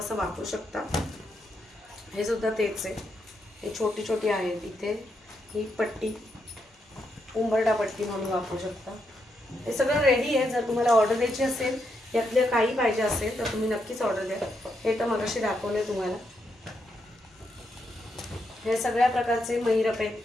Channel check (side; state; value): both; normal; correlation 0.81